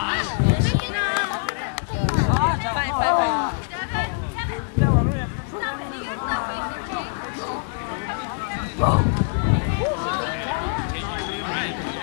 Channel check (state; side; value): silent; right; digital silence